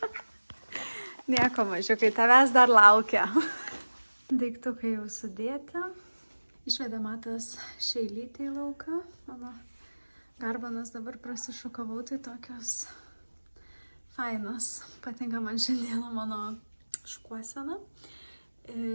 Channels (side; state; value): both; inverted; correlation -1.00